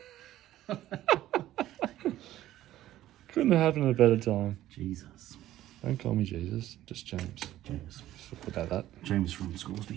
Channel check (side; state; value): left; quieter; 13.9 dB